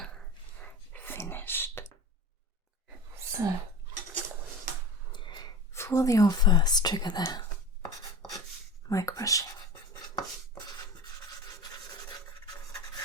finished. So, for your first trigger there, mic brushing,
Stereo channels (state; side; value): normal; both; correlation 0.33